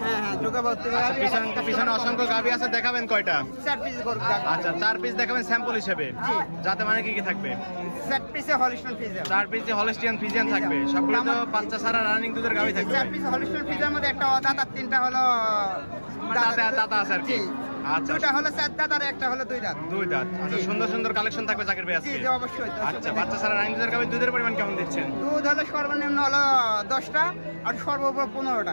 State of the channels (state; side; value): inverted; both; correlation -1.00